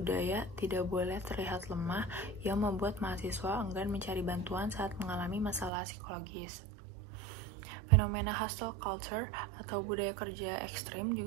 tidak boleh terlihat lemah yang membuat mahasiswa enggan mencari bantuan saat mengalami masalah psikologis. Fenomena hustle culture atau budaya kerja ekstrim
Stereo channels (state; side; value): drops out; left; at 5.7 s